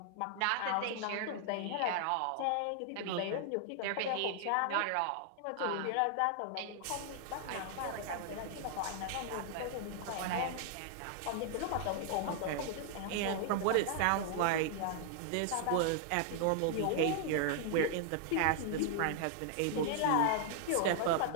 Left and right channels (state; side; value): different; both; correlation 0.00